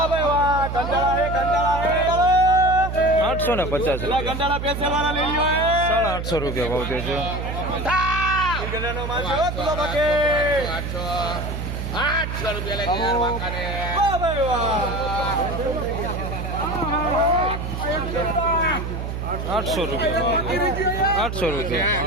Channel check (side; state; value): right; noise; hum, 5 dB below the sound